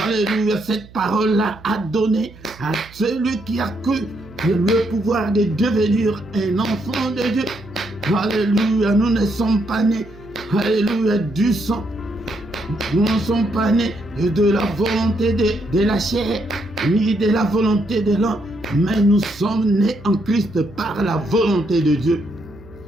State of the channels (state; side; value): noise; right; hum, 21 dB below the sound